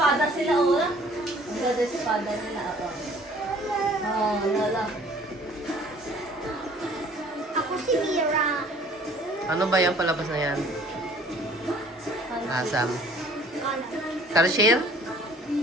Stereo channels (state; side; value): normal; both; correlation 0.53